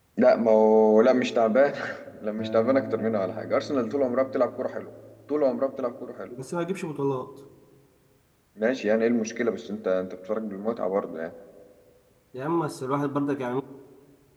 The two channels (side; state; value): both; identical; correlation 1.00